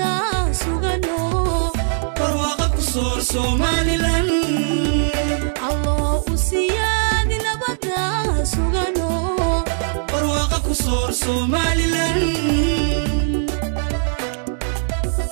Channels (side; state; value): left; silent; digital silence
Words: سوغانو برواقة كسور سوماليلاند الله سيادي نبدا سوغانو برواقة كسور سوماليلاند